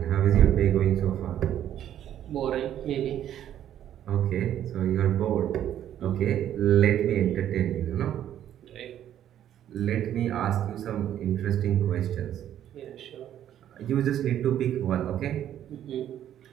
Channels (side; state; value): left; quieter; 10.9 dB